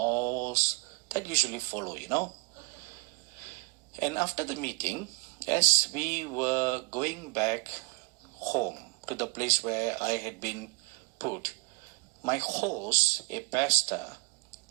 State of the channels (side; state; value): left; quieter; 27.0 dB